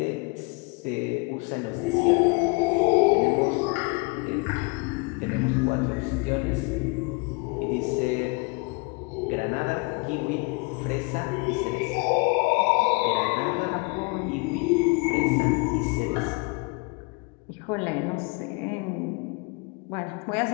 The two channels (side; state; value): right; quieter; 29.7 dB